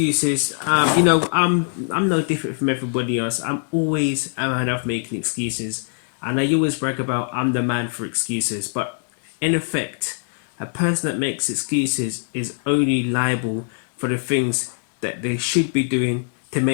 I'm no different from everybody else. I'm always a man of making excuses, and I always brag about I'm the man for excuses. But in effect, a person that makes excuses is only liable for the things that they should be doing to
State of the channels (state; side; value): silent; right; digital silence